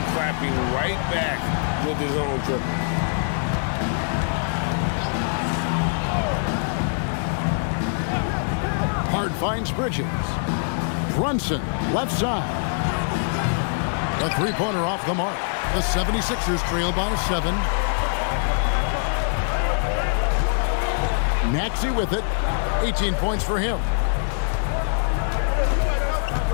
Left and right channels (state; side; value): silent; right; 63 dB below the other